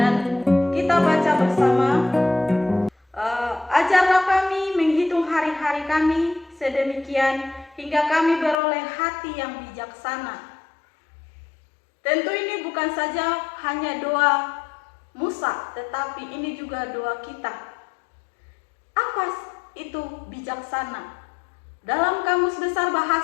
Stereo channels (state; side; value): drops out; right; at 8.6 s